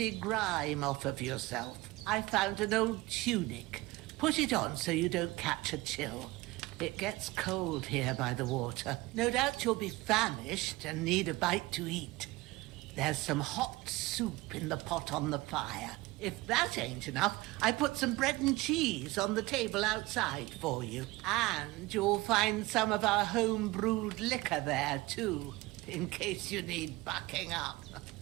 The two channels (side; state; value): left; quieter; 20.8 dB